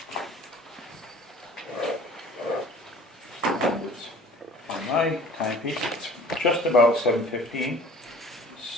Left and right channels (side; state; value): both; normal; correlation 0.47